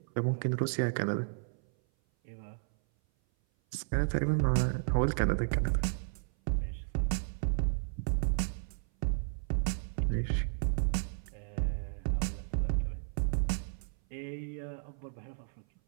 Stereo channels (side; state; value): left; silent; 56 dB below the other